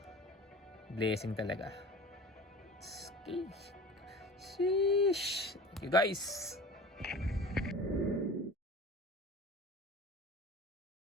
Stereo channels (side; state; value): both; normal; correlation 0.37